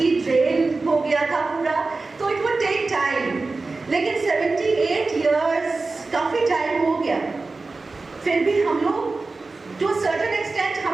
ड्रेन हो गया था पूरा, तो इट वुड टेक टाइम। लेकिन 78 इयर्स काफ़ी टाइम हो गया, फिर भी हम लोग टू सर्टेन एक्सटेंट,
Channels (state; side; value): quieter; left; 3.7 dB